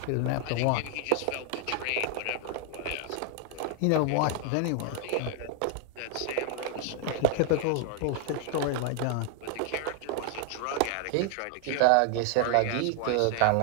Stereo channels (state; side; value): different; both; correlation 0.00